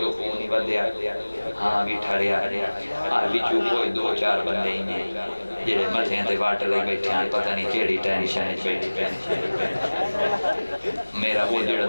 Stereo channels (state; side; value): inverted; both; correlation -1.00